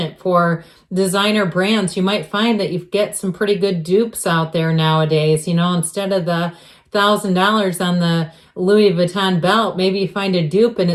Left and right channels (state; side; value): identical; both; correlation 1.00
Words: for designer brands, you might find that you get some pretty good dupes out there nowadays. Instead of the $1,000 on the Louis Vuitton belt, maybe you find a dupe and